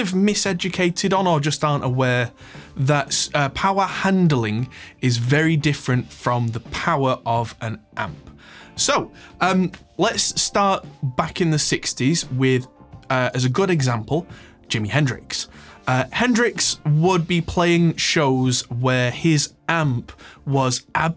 miseducated on or just aren't aware that power handling is very different from the power of an amp. So let's start back in the 60s with, as a good example, Jimi Hendrix. Hendrix would be playing shows where his amp was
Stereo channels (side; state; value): both; identical; correlation 1.00